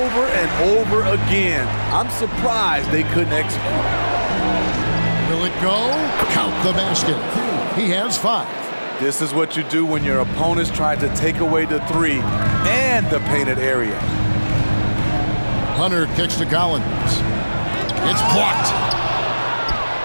and over again. I'm surprised they couldn't execute. Will it go? Count the basket. He has 5. This is what you do when your opponent's trying to take away the three and the painted area. Hunter kicks to Collins. It's blocked.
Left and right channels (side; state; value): both; inverted; correlation -1.00